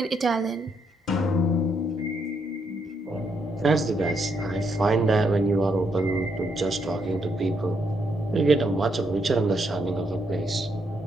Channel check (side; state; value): both; normal; correlation 0.77